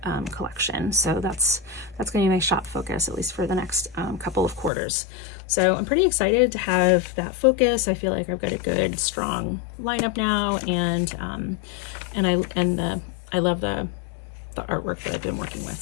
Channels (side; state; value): right; drops out; at 4.7 s